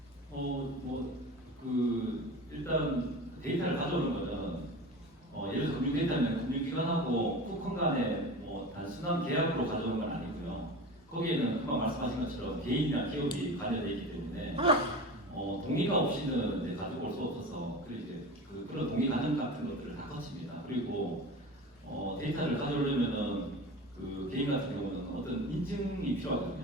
일단 데이터를 가져오는 거는 예를 들어서 금융 데이터는 금융기관하고 푸콘 간의 뭐 단순한 계약으로 가져오는 건 아니고요. 거기에는 금방 말씀하신 것처럼 개인이나 기업이 관여되어 있기 때문에 동의가 없이는 이제 가지고 올 수 없어서 그런 동의 과정 같은 것들을 다 거칩니다. 그리고 데이터를 가져오려면은 그 개인 같은 경우는 어떤 인증이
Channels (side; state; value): both; normal; correlation 0.32